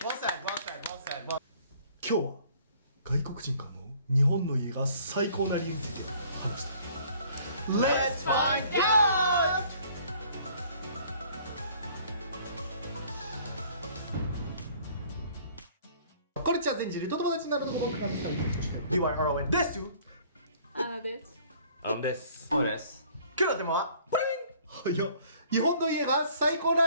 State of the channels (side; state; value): both; inverted; correlation -0.56